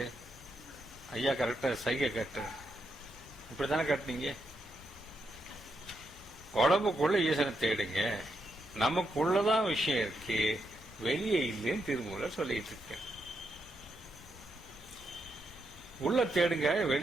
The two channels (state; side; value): normal; both; correlation 0.81